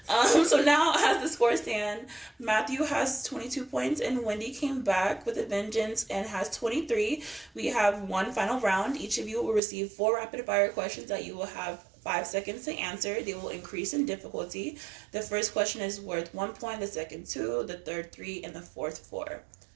So now, as the scores stand, Matthew has 22 points, and Wendy came back with a vengeance and has 23. We have one final round. Each of you will receive 4 rapid-fire questions that you will have 5 seconds to answer. They will increase in difficulty. The first question is worth 1 point, the second 2, the third 3, and the fourth 4.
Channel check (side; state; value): left; drops out; at 9.6 s